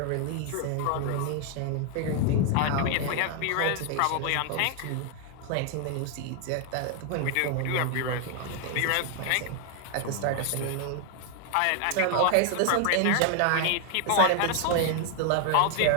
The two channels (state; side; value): different; both; correlation 0.00